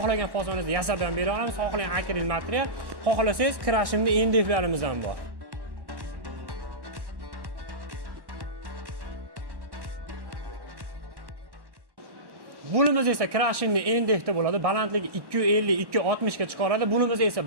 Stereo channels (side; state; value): left; late; 1.1 ms